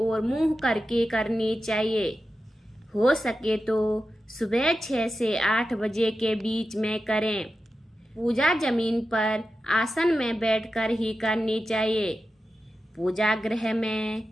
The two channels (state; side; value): normal; both; correlation 0.92